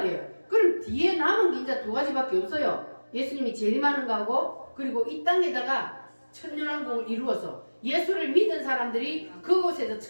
그럼 뒤에 남은 게 이제 두 가지밖에 없어요. 예수님이 재림하는 거하고 그리고 이 땅에다가 천년왕국을 이루어서 예수를 믿은 사람들이 그곳에서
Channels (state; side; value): inverted; both; correlation -1.00